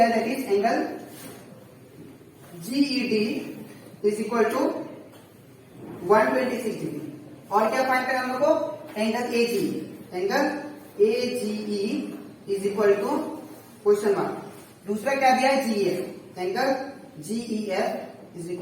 that is angle GED is equal to 126 degree. और क्या फाइंड करना हम लोग को, angle AGE, angle AGE is equal to question mark. दूसरा क्या दिया है, GEF, angle GEF is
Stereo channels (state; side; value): identical; both; correlation 1.00